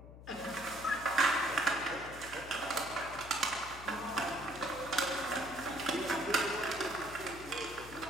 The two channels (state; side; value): noise; left; hum, 15 dB below the sound